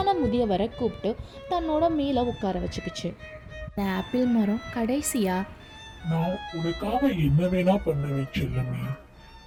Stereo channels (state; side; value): identical; both; correlation 1.00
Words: முதியவரை கூப்பிட்டு தன்னோட மேல உட்கார வச்சுக்கிச்சு. அந்த ஆப்பிள் மரம் கடைசியா, நான் உனக்காக என்ன வேணா பண்ணுவேன் செல்லமே,